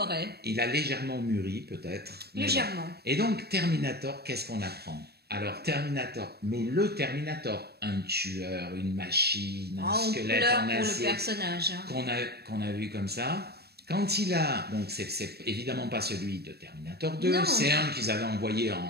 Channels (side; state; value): left; late; 0.47 ms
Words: Il a légèrement mûri, peut-être. Légèrement. Et donc, Terminator, qu'est-ce qu'on apprend? Alors, Terminator, mais le Terminator, un tueur, une machine, un squelette en acier. Pour le personnage. Hein. Qu'on a vu comme ça. Quand il a, donc c'est évidemment pas celui de Terminator 2, c'est un qu'ils avaient envoyé